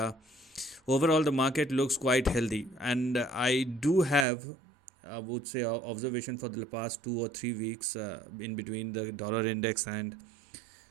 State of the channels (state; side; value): drops out; left; at 4.2 s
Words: overall the market looks quite healthy, and I do have, I would say, observation for the past 2 or 3 weeks in between the dollar index and